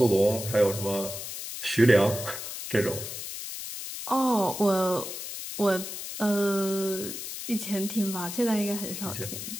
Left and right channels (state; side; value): noise; left; hiss, 8 dB below the sound